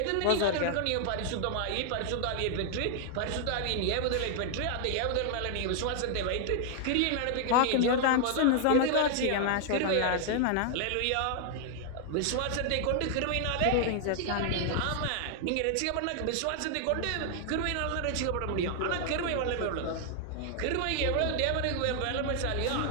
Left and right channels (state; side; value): different; both; correlation 0.00